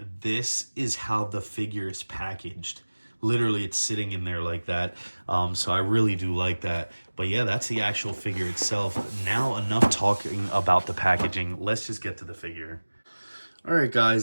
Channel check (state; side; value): inverted; both; correlation -1.00